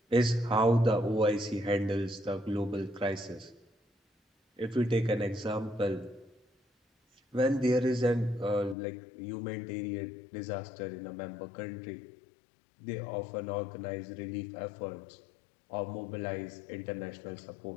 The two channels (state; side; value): drops out; right; at 8.8 s